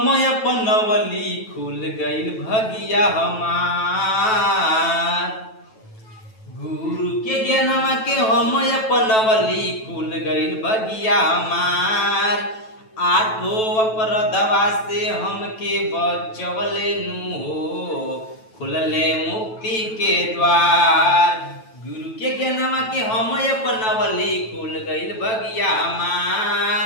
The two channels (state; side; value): late; right; 9.2 ms